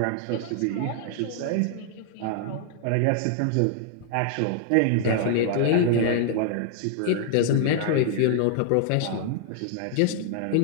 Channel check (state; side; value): different; both; correlation 0.00